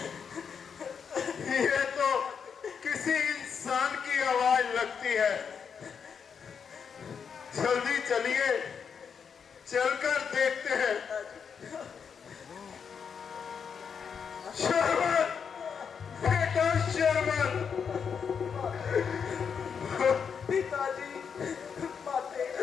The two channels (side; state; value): right; quieter; 6.7 dB